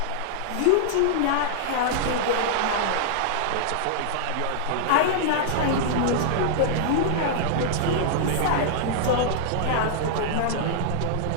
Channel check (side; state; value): both; different; correlation -0.01